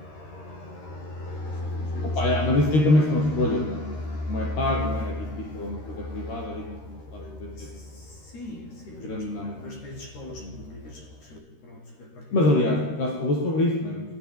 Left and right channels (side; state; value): right; late; 13 ms